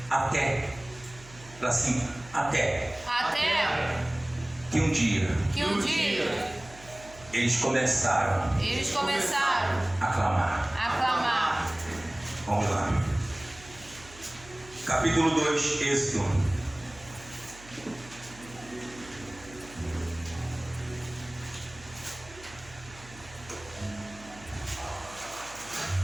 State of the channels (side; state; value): right; noise; hum, 20 dB below the sound